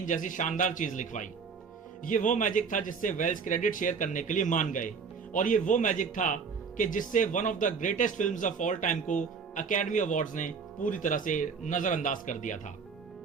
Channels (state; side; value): quieter; left; 5.6 dB